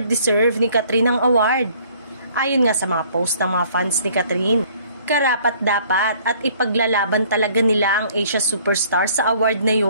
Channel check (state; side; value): inverted; both; correlation -0.58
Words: deserve ni Catherine ang award. Ayon nga sa mga post ng mga fans ni Catherine, karapat-dapat at ipaglalaban talaga nila ang Asia Superstar sa award na